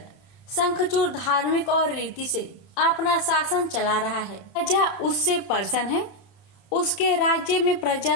शंखचूड़ धार्मिक और रीति से अपना शासन चला रहा है। प्रजा उससे प्रसन्न है। उसके राज्य में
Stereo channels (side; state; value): right; late; 31 ms